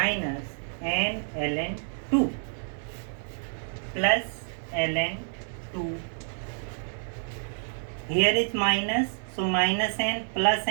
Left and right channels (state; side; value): silent; left; digital silence